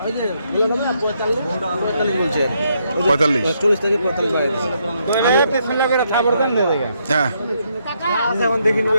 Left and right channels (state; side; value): inverted; both; correlation -0.76